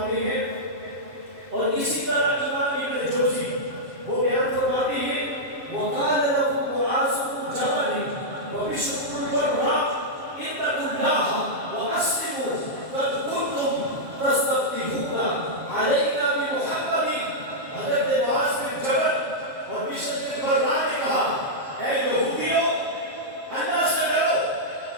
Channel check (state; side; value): late; left; 7.5 ms